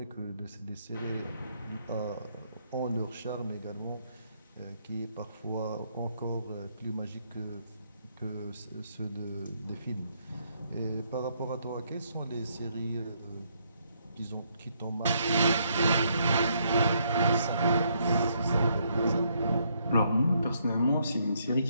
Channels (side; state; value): both; inverted; correlation -0.72